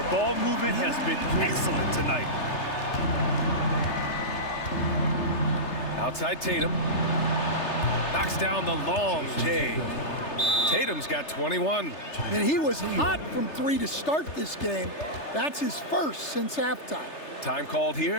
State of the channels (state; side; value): late; right; 3.3 ms